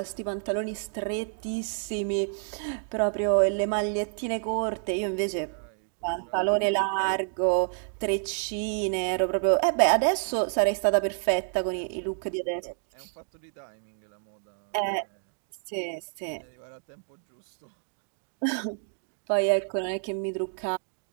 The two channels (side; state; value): left; silent; 59 dB below the other